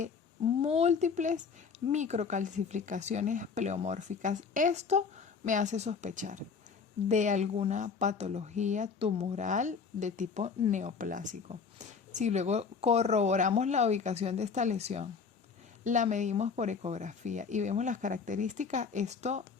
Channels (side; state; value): right; quieter; 5.6 dB